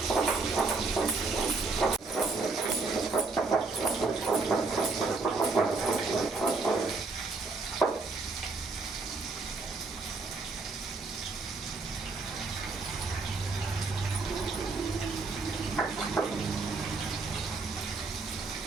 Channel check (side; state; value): left; quieter; 3.9 dB